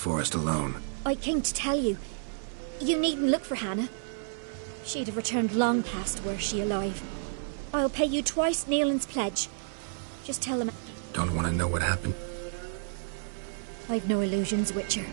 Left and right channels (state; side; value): silent; left; 58 dB below the other